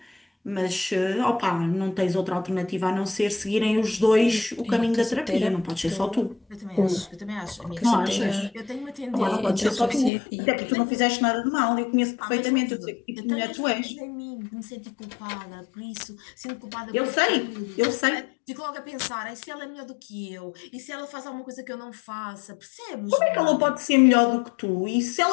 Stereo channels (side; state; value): right; drops out; at 10.1 s